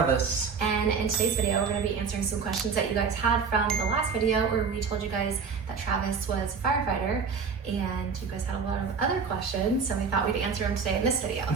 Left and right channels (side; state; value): left; quieter; 5.6 dB